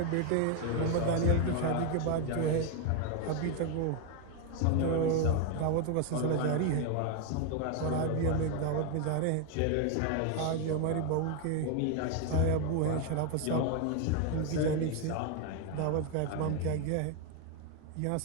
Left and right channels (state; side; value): different; both; correlation 0.01